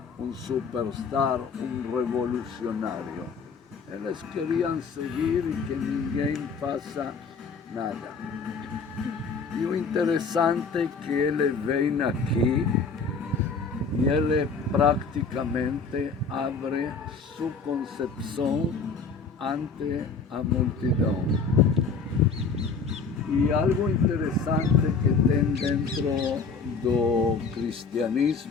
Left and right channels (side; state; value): right; quieter; 4.8 dB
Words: um superstar, um revolucionário. Eles queriam seguir e que ninguém faça nada. E o interessante é que ele vem aqui e ele praticamente abre sua concepção ante a multidão. E algo interessante que tem dentro do